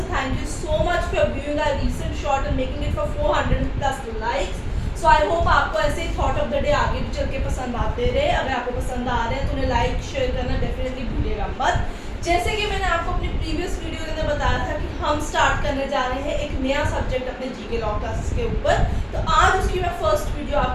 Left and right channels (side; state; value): both; identical; correlation 1.00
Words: thank you so much for viewing our recent short and making it for 400 plus likes. So I hope आपको ऐसे ही थॉट ऑफ द डे आगे भी चल के पसंद आते रहे. अगर आपको पसंद आ रहे हैं तो उन्हें लाइक शेयर करना डेफिनेटली भूलिएगा मत. जैसे कि मैंने आपको अपनी प्रीवियस वीडियो के अंदर बताया था कि हम स्टार्ट करने जा रहे हैं एक नया सब्जेक्ट अपने जीके लॉ क्लासेस के ऊपर. तो आज उसकी मैं फर्स्ट वीडियो